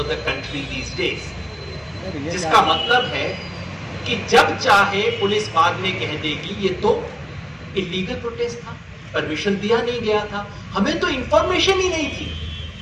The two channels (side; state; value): both; identical; correlation 1.00